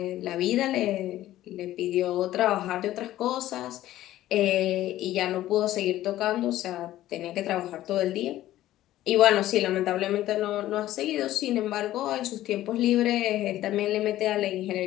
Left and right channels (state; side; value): quieter; right; 14.3 dB